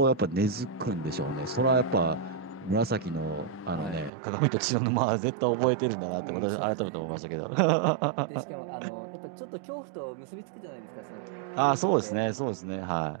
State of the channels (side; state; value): left; drops out; at 4.1 s